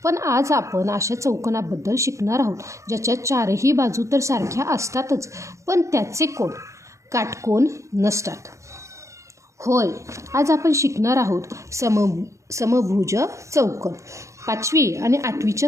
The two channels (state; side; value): late; left; 0.15 ms